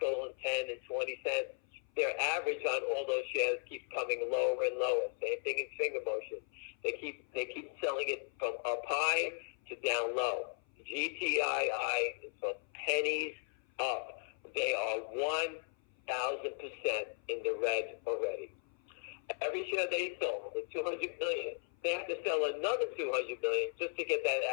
and 10 and 20 cents, their average on all those shares keeps coming lower and lower. Same thing in finger motion. They keep selling it from up high to down low. GTII is from pennies up. They are 1,000% in the red already. Every share they sold, the 200 million, they have to sell another 200 million just to get that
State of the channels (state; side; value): silent; right; 53 dB below the other